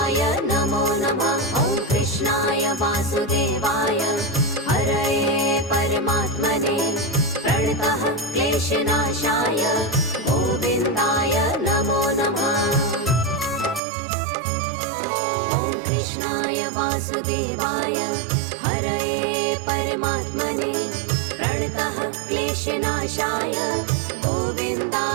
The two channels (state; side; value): drops out; left; at 13.8 s